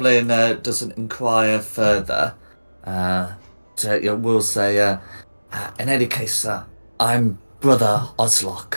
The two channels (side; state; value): both; inverted; correlation -1.00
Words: doesn't inquire further. We'll say, in any case, I'm Brother